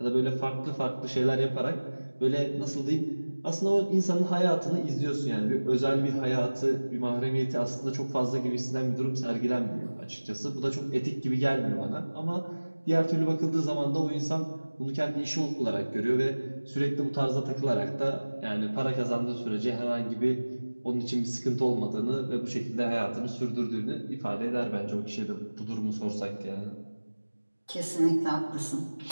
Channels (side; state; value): both; inverted; correlation -1.00